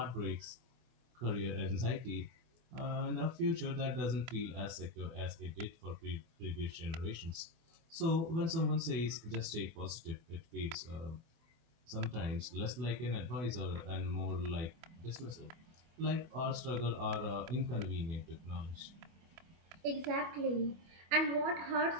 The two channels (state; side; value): late; left; 24 ms